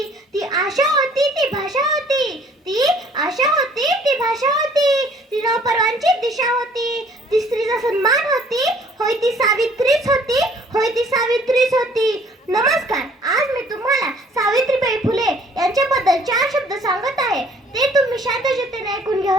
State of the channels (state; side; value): normal; both; correlation 0.57